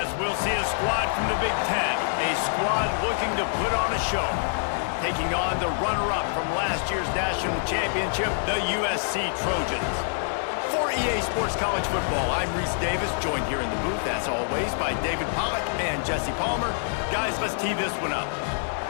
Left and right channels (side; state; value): right; silent; digital silence